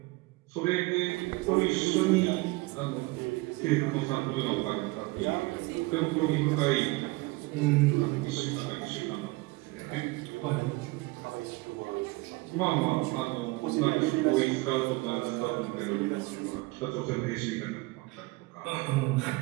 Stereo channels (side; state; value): left; quieter; 22.9 dB